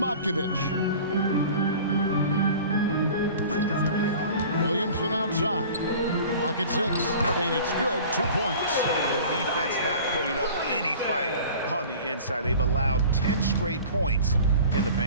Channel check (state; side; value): inverted; both; correlation -0.42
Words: Williamson outside. Clock at 6, and it's good. 2 points. The defense not putting up any fight on the inside. They've allowed 10 straight points in the